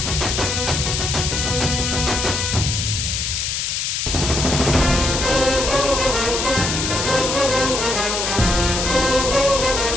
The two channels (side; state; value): left; noise; hiss, 1 dB below the sound